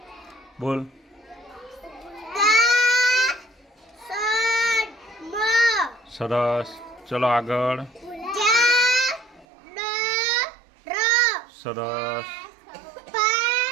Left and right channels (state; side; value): drops out; left; at 9.5 s